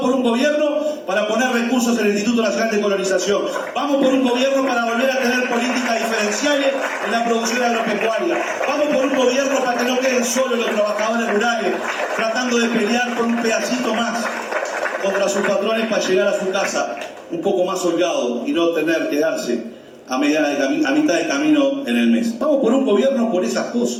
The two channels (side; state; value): both; identical; correlation 1.00